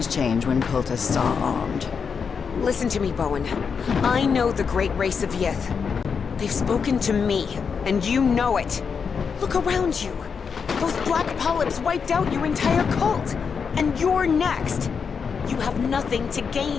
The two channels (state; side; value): quieter; right; 6.1 dB